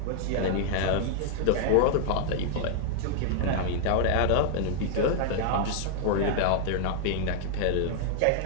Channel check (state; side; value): different; both; correlation -0.01